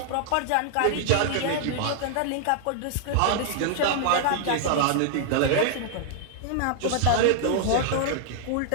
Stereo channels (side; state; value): both; different; correlation -0.01